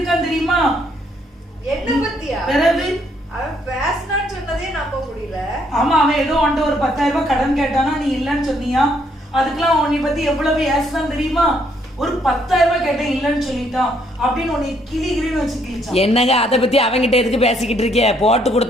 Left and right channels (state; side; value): normal; both; correlation 0.70